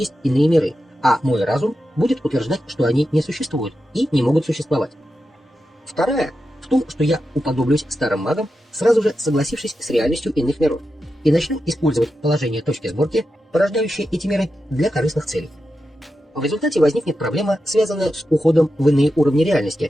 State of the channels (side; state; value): both; normal; correlation 0.89